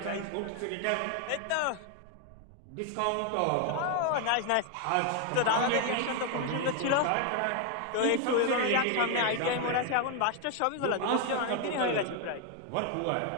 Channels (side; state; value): both; different; correlation 0.01